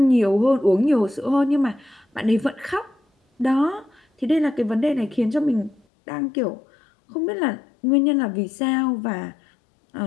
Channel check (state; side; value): drops out; right; at 5.8 s